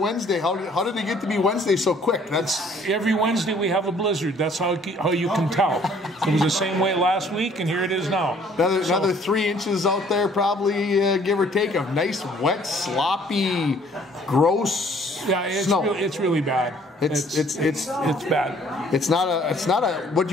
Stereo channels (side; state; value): both; normal; correlation 0.59